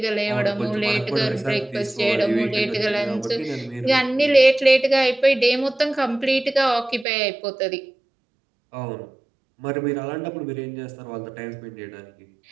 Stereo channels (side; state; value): left; drops out; at 7.1 s